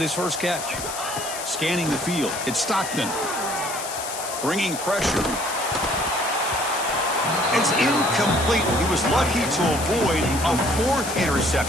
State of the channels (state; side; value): noise; left; hiss, 8 dB below the sound